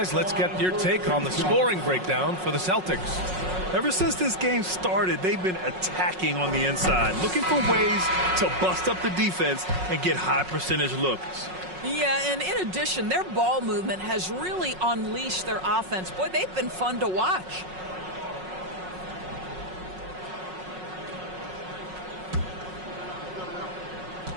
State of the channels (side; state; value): left; late; 5.5 ms